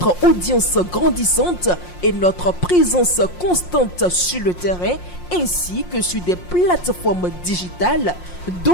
audience grandissante et notre présence constante sur le terrain ainsi que sur des plateformes digitales,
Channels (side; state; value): right; late; 5.6 ms